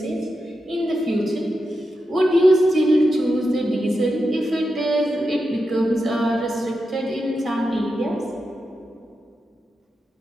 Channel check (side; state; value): both; normal; correlation 0.88